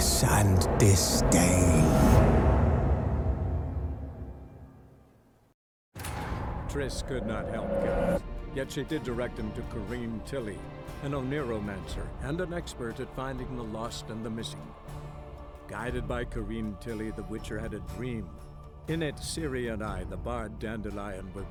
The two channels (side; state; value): both; identical; correlation 1.00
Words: and disdain. Triss could not help Geralt, yet she did direct him to Kareem Tilly, an Oniromancer and an expert at finding the lost and the missing. Guided by Kareem Tilly, the Witcher had a dream. In it, Ciri and I, the bard Dandelion, were